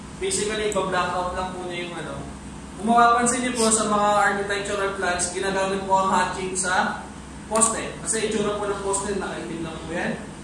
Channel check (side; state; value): both; identical; correlation 1.00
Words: Basically, iba-blackout lang po niya yung Kung mapapansin niyo po sa mga architectural plans, ginagamit po ang hatching sa poste. Kasi itsura po ng poste, nakaitim lang po yan.